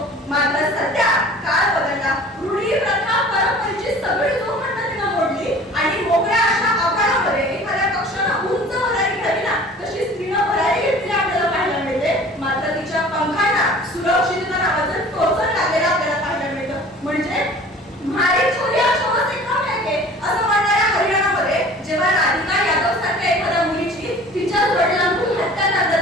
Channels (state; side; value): normal; both; correlation 0.45